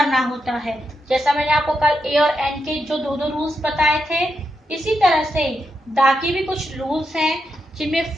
होता है। जैसा मैंने आपको कल ए और एन के जो दो दो रूल्स बताए थे, इसी तरह से द के भी कुछ रूल्स हैं, जिनमें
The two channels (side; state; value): both; normal; correlation 0.84